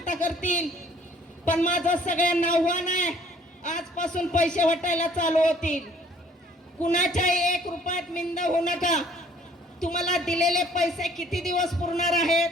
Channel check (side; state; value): both; normal; correlation 0.58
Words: करतील. पण माझं सगळ्यांना आव्हान आहे, आजपासून पैसे वाटायला चालू होतील. कुणाच्याही 1 रुपयात मिंद होऊ नका. तुम्हाला दिलेले पैसे किती दिवस पुरणार आहेत?